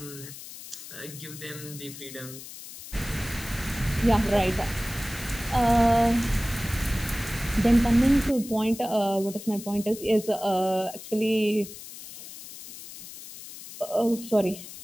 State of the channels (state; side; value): noise; left; hiss, 14 dB below the sound